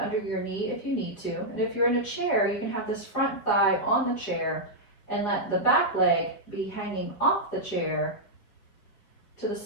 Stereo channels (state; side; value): late; right; 5.0 ms